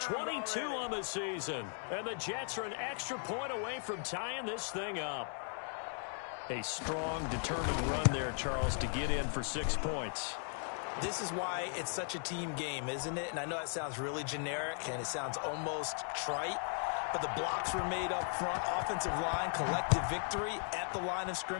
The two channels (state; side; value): silent; right; 53 dB below the other